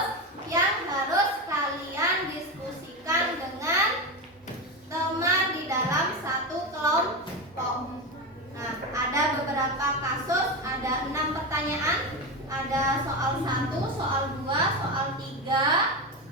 yang harus kalian diskusikan dengan teman di dalam satu kelompok. Nah, ada beberapa kasus, ada 6 pertanyaan. Ada soal 1, soal 2, soal 3,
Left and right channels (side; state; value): both; normal; correlation 0.17